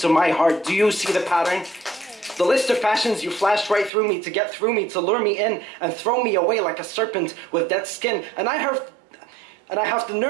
my heart. Do you see the pattern? The list of passions you flashed right through me to get through me, to lure me in and throw me away like a serpent with dead skin. And I have the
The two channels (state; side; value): drops out; left; at 3.9 s